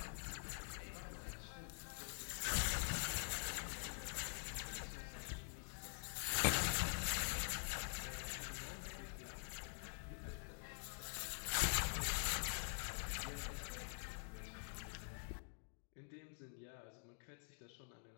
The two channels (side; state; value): right; silent; digital silence